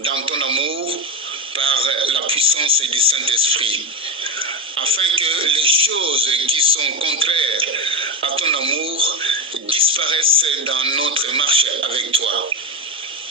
ton amour par la puissance du Saint-Esprit, afin que les choses qui sont contraires à ton amour disparaissent dans notre marche avec toi.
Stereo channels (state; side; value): normal; both; correlation 0.15